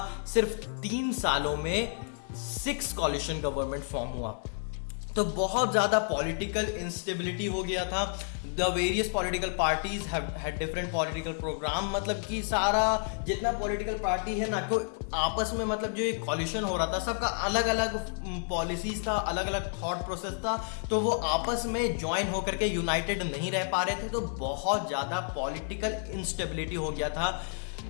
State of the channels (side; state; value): right; silent; 57 dB below the other